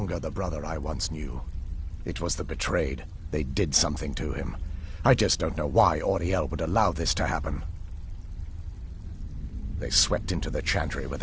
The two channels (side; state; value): both; identical; correlation 1.00